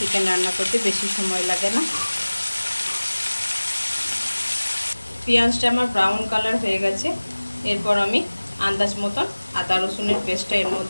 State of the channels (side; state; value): both; inverted; correlation -1.00